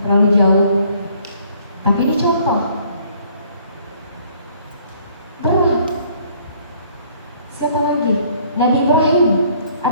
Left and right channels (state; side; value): inverted; both; correlation -0.60